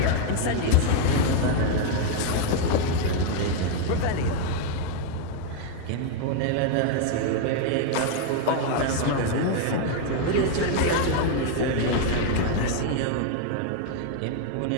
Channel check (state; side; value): different; both; correlation 0.00